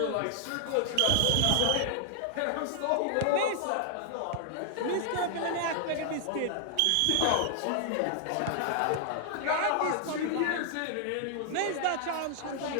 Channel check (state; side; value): different; both; correlation 0.00